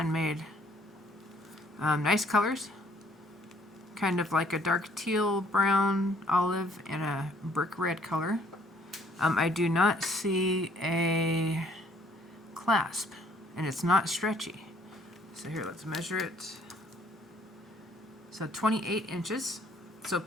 Nice colors. Kind of like a dark teal, brown, olive, and a brick red color. I do not see a clasp, and it's not stretchy. So here, let's measure it. So 28 inches, so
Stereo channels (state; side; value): normal; both; correlation 0.62